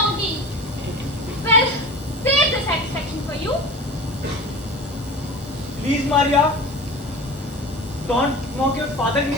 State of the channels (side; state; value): both; normal; correlation 0.35